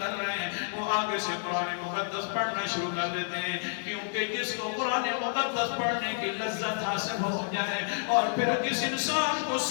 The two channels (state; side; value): silent; right; digital silence